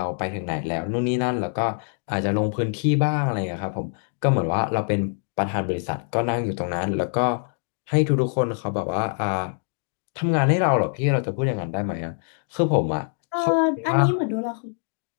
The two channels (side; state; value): right; silent; 60 dB below the other